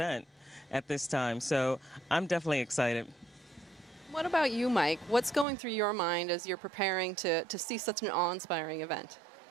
at this time. So I'm definitely excited. What about you, Mike? What's going through your mind as you're preparing to see such an awe-inspiring event?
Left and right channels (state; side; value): drops out; left; at 5.5 s